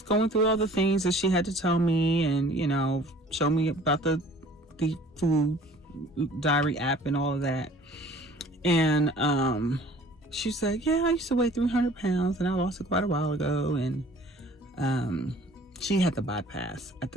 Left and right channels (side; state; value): both; normal; correlation 0.50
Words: going through all the things that she had to tell me, and show me about the food diary app and all of that. And she said, yeah, I used to weigh 300 pounds and I lost it quite a while ago. And she had the bypass at